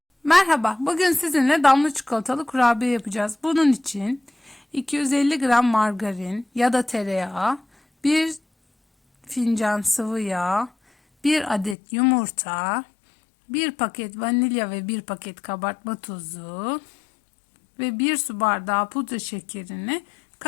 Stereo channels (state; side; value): drops out; right; at 11.8 s